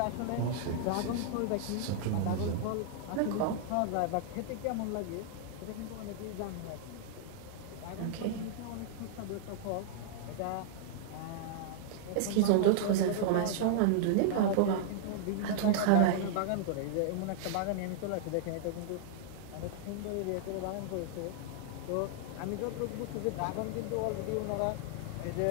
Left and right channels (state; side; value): different; both; correlation -0.01